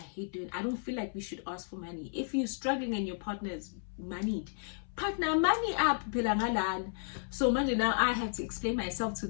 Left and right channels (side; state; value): right; silent; 56 dB below the other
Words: don't feel like we should ask for money. If you're struggling and your partner is moneyed, partner money up. So manje now I have to explain myself to